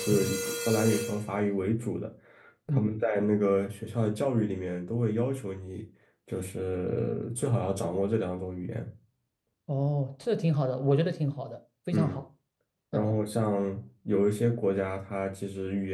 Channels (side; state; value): both; identical; correlation 1.00